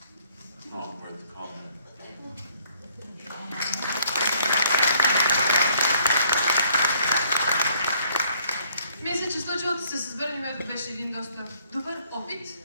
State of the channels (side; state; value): both; inverted; correlation -0.64